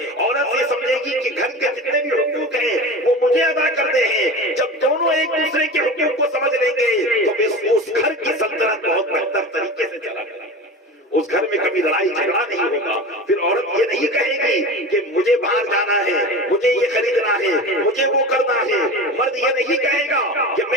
عورت یہ سمجھے گی کہ گھر کے جتنے بھی حقوق ہیں وہ مجھے ادا کرنے ہیں. جب دونوں ایک دوسرے کے حقوق کو سمجھ لیں گے تو اس گھر کی سلطنت بہت بہتر طریقے سے چلا کرے گی. اس گھر میں کبھی لڑائی جھگڑا نہیں ہوگا. پھر عورت یہ نہیں کہے گی کہ مجھے باہر جانا ہے، مجھے یہ خریدنا ہے، مجھے وہ کرنا ہے. مرد یہ نہیں کہے گا کہ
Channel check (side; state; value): both; normal; correlation 0.31